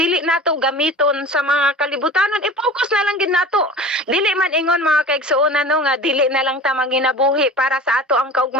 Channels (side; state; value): both; normal; correlation 0.38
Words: nato gamiton sa mga kalibutanon, i-focus na lang gid nato. Dili man ingon mga kaigsuonan no nga dili na lang ta manginabuhi para sa ato ang